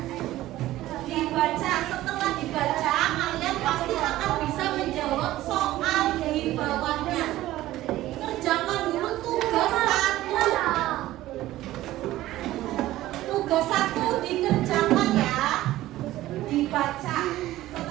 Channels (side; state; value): left; quieter; 15.5 dB